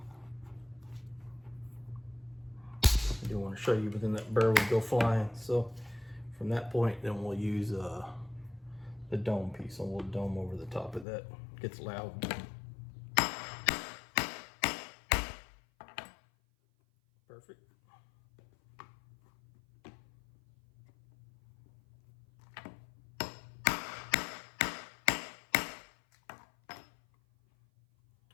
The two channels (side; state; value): right; drops out; at 11.1 s